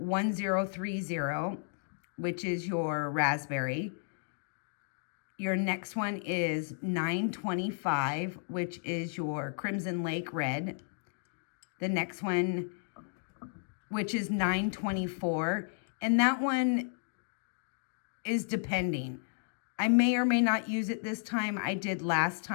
which is your raspberry. Your next one is 925, which is your Crimson Lake red. The next one, which is 924, and that one is depending. I may or may not use it this time. I did last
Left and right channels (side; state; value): right; silent; digital silence